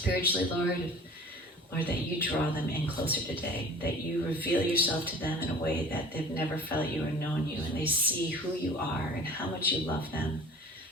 Lord, that you draw them in closer today, that you reveal yourself to them in a way that they've never felt you or known you, and they see who you are and how much you love them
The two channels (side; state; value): both; normal; correlation 0.44